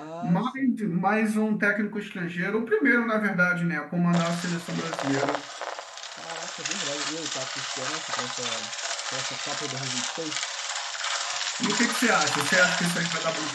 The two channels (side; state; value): both; identical; correlation 1.00